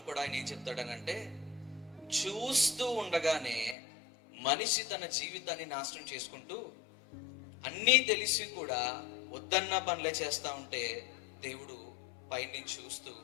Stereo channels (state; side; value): drops out; right; at 3.8 s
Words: కూడా ఆయన ఏం చెప్తాడనంటే, చూస్తూ ఉండగానే మనిషి తన జీవితాన్ని నాశనం చేసుకుంటూ అన్నీ తెలిసి కూడా వద్దన్న పనులే చేస్తా ఉంటే దేవుడు పైనుంచి చూస్తూ